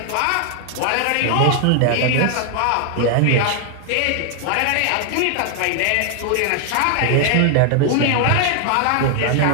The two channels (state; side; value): different; both; correlation 0.00